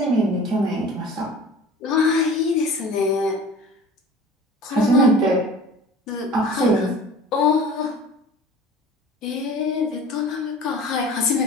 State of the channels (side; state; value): both; normal; correlation 0.41